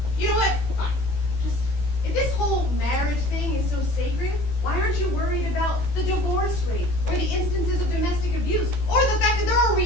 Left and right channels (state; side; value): late; right; 15 ms